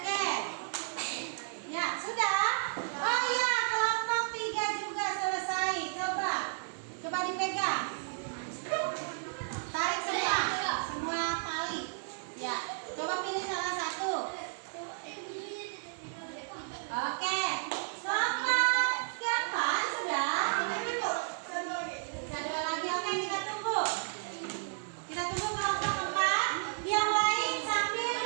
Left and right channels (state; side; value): silent; left; 56 dB below the other